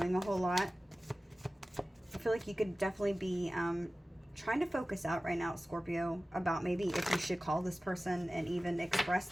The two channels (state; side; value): normal; both; correlation 0.96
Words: a whole lot. I feel like you could definitely be trying to focus out right now, Scorpio, about maybe if you should call this person and even